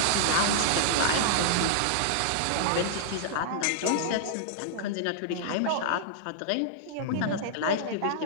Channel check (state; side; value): different; both; correlation -0.01